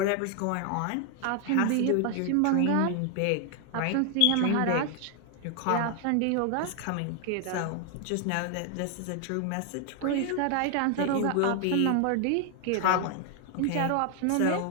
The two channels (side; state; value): both; different; correlation 0.00